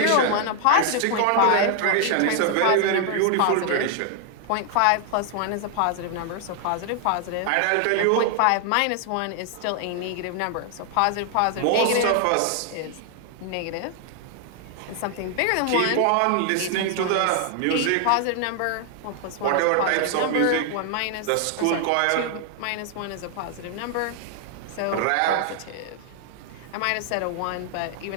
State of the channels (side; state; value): both; different; correlation 0.00